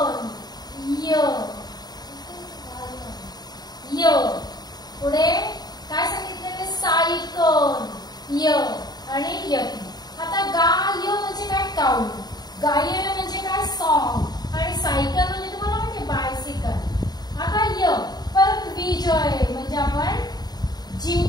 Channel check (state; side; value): late; right; 0.20 ms